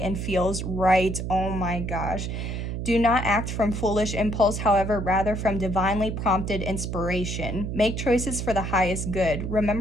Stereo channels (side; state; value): right; noise; hum, 4 dB below the sound